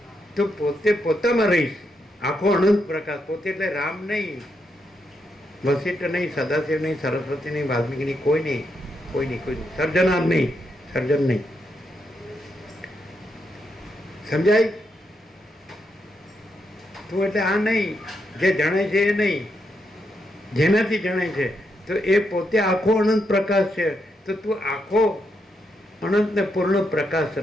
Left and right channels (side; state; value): both; normal; correlation 0.81